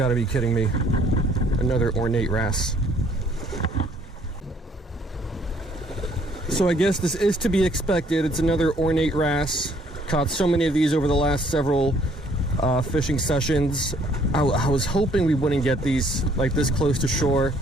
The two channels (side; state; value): both; normal; correlation 0.63